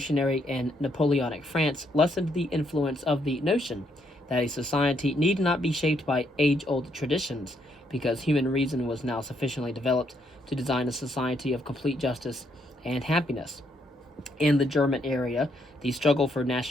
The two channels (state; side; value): normal; both; correlation 0.74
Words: and Napoleonic France lessened the influence of the notion that a society need not be shaped by age-old traditions, because human reason was now sufficiently developed to design a society of complete justice and happiness. In the German area, the struggle for